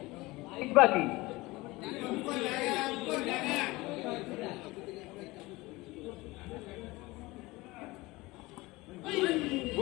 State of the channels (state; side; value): quieter; right; 21.3 dB